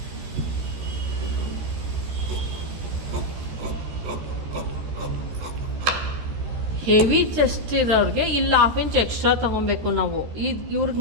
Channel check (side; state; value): left; late; 13 ms